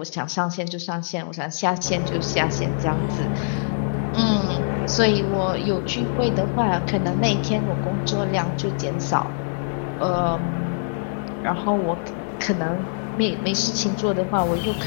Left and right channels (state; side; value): silent; right; digital silence